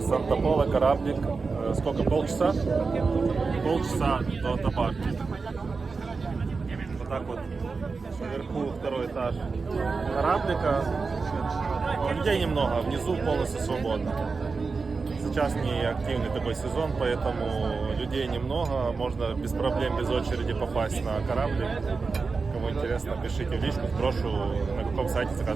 Санта-Пола кораблик, сколько, полчаса? Полчаса до табарки. Вот так вот, наверху второй этаж кораблика. Людей немного, внизу полностью свободно. Сейчас не активный такой сезон, поэтому людей немного, можно без проблем, без очереди попасть на кораблик. Кому интересно, пишите в личку, сброшу, на каком сайте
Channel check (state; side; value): quieter; left; 4.5 dB